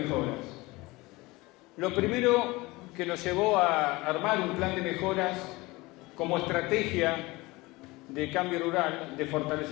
Lo primero que nos llevó a armar un plan de mejoras como estrategia de cambio rural, de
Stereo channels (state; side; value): quieter; right; 22.0 dB